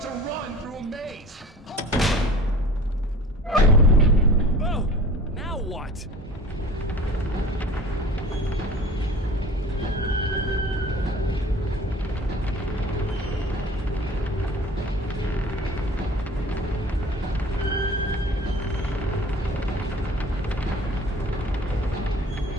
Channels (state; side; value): normal; both; correlation 0.43